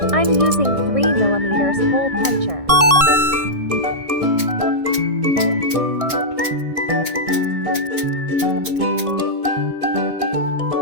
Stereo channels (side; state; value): left; late; 1.6 ms